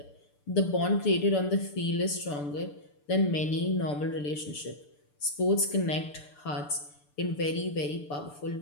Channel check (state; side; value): late; right; 6.8 ms